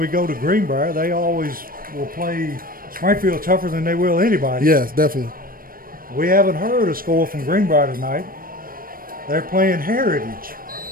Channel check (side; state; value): left; late; 0.41 ms